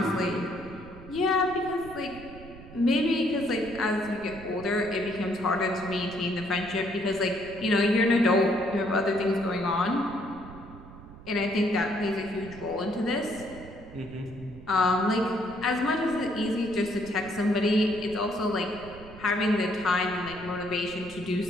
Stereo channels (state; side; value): noise; right; rumble, 17 dB below the sound